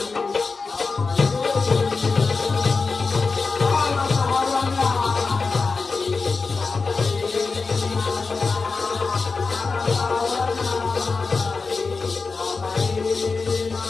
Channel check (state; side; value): quieter; right; 4.4 dB